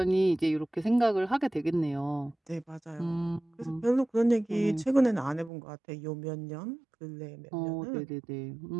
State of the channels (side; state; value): left; drops out; at 5.5 s